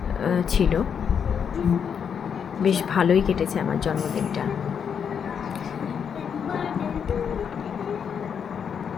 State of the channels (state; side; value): quieter; right; 7.4 dB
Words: ছিল, বেশ ভালোই কেটেছে আমার জন্মদিনটা।